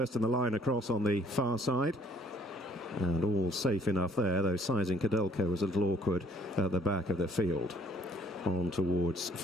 in the line across on the far side. And all safe enough there, though Sizing Cadelco was a little awkward at the back of the field. On towards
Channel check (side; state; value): both; normal; correlation 0.60